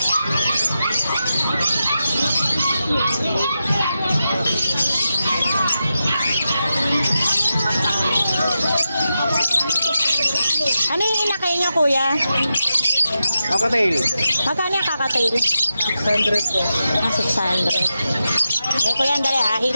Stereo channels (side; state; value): both; inverted; correlation -0.89